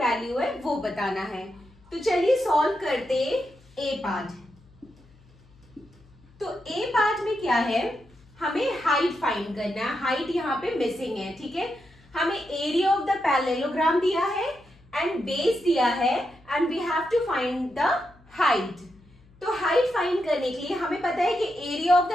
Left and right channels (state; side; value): noise; left; hum, 28 dB below the sound